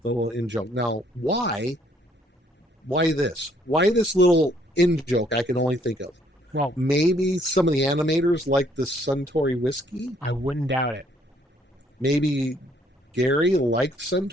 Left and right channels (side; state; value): both; normal; correlation 0.65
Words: the little in joke. Now, why this? Why this little in joke? I can only think of. Well, maybe some of the animators like the Suntory whiskey. I wouldn't doubt it. Maybe Gary liked